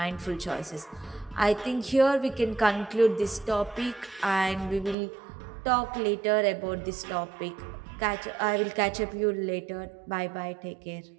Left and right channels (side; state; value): left; drops out; at 5.0 s